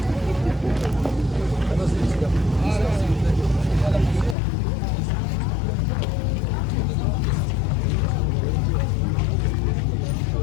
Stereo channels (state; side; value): drops out; right; at 4.4 s